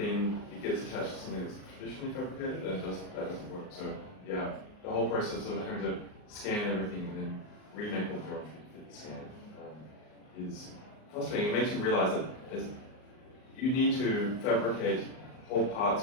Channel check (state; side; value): late; right; 38 ms